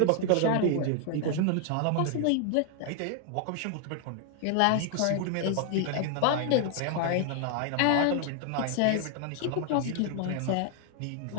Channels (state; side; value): different; both; correlation 0.00